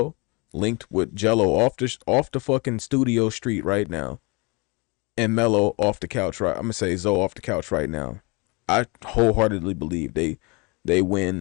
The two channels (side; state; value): right; quieter; 28.6 dB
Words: linked with Jello off the fucking studio street right now, and Melo off the couch right, I'm gonna say Zoe off the couch right now, I wholeheartedly believe they